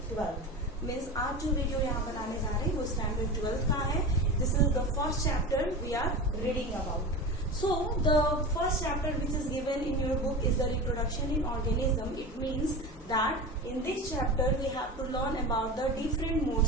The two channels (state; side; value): normal; both; correlation 0.28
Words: 12. Means आज जो video यहाँ बनाने जा रहे हैं वो standard 12 का है. This is the first chapter we are reading about. So the first chapter which is given in your book is the reproduction in organism. It means that in this chapter we have to learn about the different